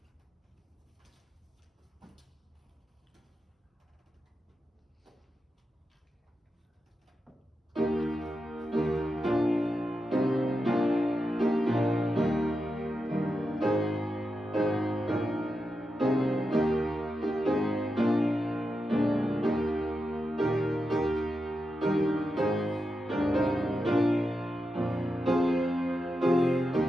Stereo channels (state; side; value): normal; both; correlation 0.88